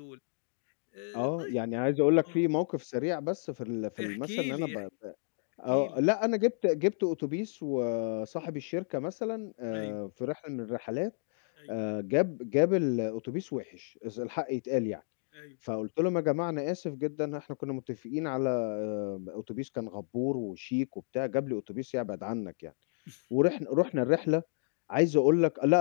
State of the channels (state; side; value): silent; right; digital silence